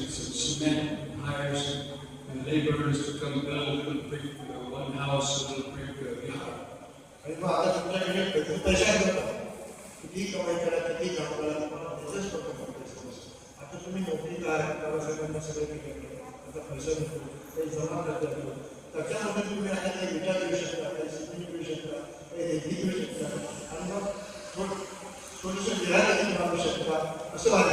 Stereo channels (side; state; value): both; identical; correlation 1.00